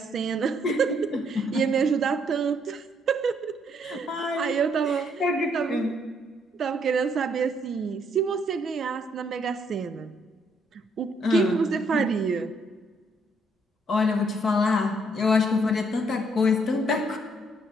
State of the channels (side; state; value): both; normal; correlation 0.70